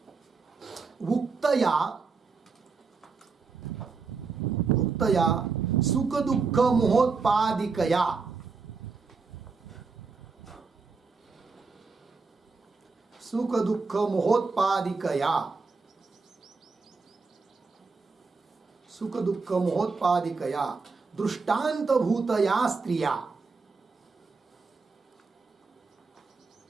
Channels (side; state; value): left; quieter; 4.6 dB